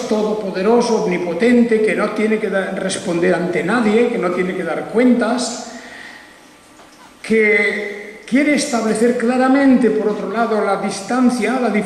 todopoderoso, omnipotente, que no tiene que responder ante nadie, que no tiene que dar cuentas, que quiere establecer claramente, por otro lado, la distancia, la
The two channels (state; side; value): identical; both; correlation 1.00